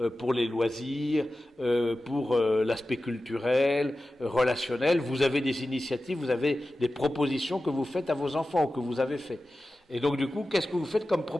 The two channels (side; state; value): both; normal; correlation 0.94